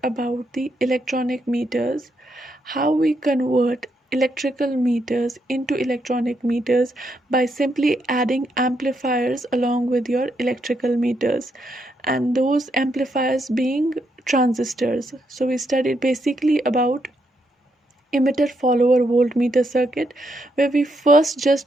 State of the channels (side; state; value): both; normal; correlation 0.79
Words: about the electronic meters, how we convert electrical meters into electronic meters by simply adding amplifiers along with your electrical meters, and those amplifiers being transistors. So we studied basically about emitter follower voltmeter circuit, where we first